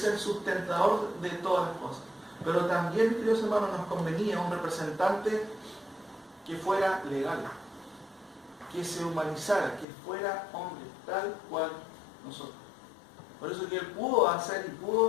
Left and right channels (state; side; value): drops out; right; at 9.9 s